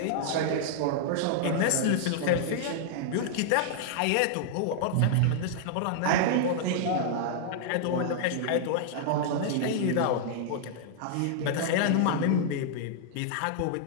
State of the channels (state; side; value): different; both; correlation -0.01